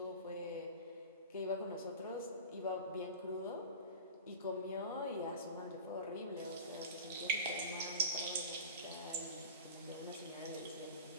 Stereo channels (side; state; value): both; inverted; correlation -0.31